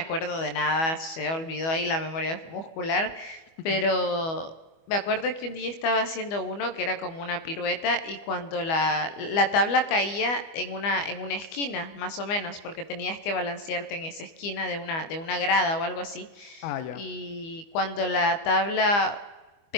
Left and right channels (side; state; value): right; late; 25 ms